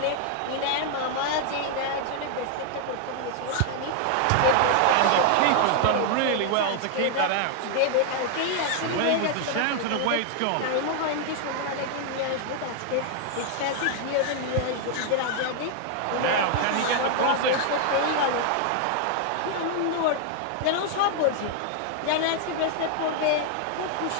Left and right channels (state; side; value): different; both; correlation 0.00